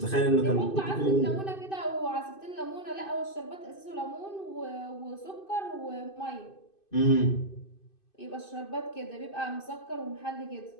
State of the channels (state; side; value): late; right; 2.5 ms